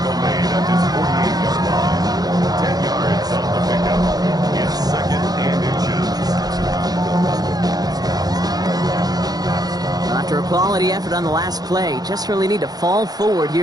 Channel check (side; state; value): left; late; 0.19 ms